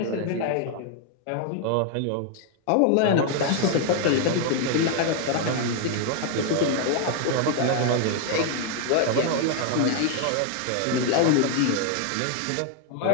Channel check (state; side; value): different; both; correlation 0.00